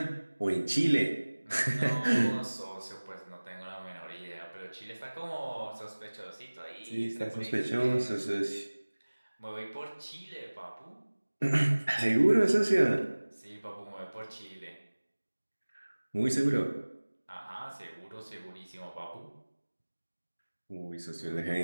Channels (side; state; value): both; inverted; correlation -1.00